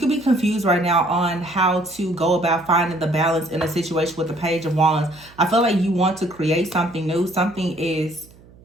be confused right now on how to go about finding the balance in a situation with the Page of Wands. I feel like you want to create something new. Something is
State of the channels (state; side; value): noise; right; hum, 25 dB below the sound